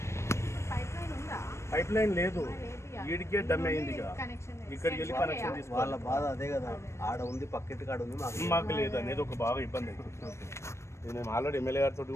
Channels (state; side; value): late; right; 0.13 ms